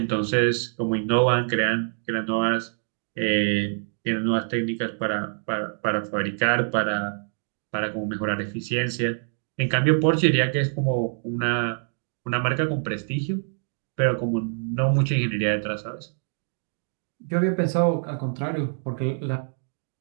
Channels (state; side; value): silent; left; 61 dB below the other